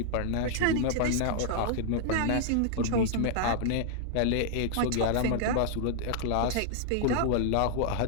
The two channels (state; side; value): different; both; correlation -0.01